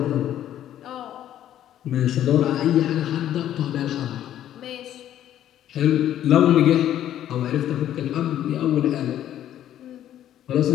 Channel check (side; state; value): right; quieter; 11.5 dB